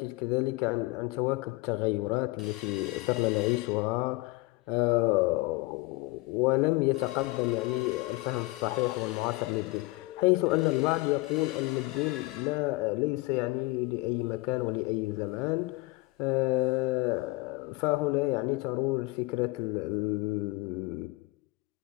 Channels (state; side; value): quieter; right; 22.8 dB